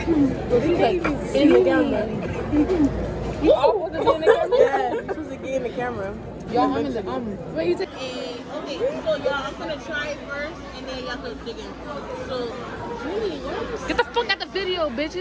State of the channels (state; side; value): identical; both; correlation 1.00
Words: in the camera. You all supposed to be in the camera? Yeah, you're supposed to get in the camera. Y'all, I'm in the What you say? Okay, so y'all, I'm gonna try it first, and then y'all can dig in. So, Julie, Get the fuck out the video, bitch.